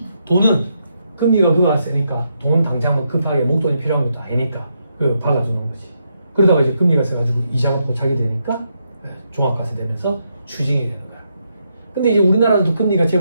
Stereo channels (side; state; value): both; inverted; correlation -0.80